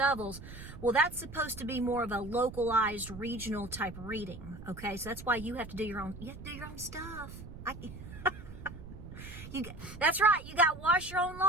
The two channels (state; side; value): noise; right; rumble, 13 dB below the sound